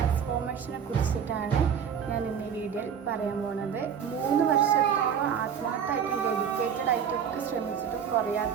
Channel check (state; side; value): quieter; left; 7.7 dB